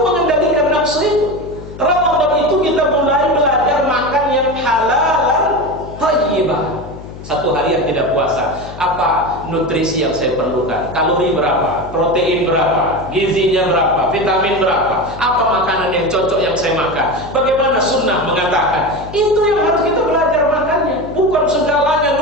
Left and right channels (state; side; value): noise; left; hum, 14 dB below the sound